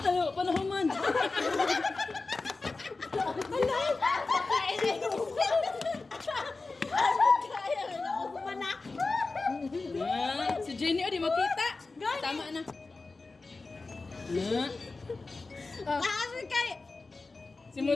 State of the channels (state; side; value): quieter; right; 3.7 dB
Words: Ano, panahon man. Si Jenny, oh, di makita. Tama na. Na. Asan kayo? Si